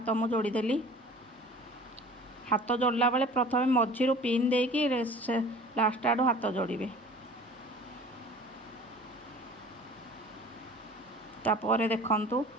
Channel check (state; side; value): normal; both; correlation 0.44